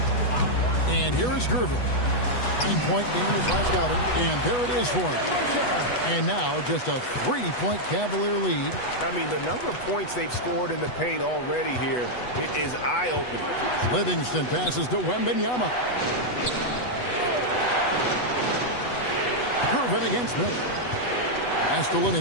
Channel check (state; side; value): late; right; 8.1 ms